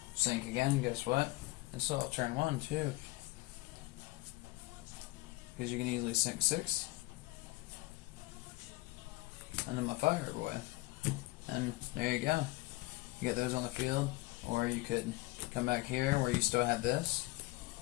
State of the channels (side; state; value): right; quieter; 21.4 dB